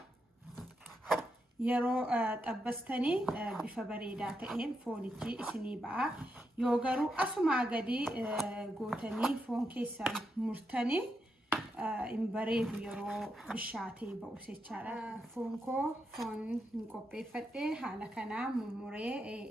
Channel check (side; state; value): both; normal; correlation 0.83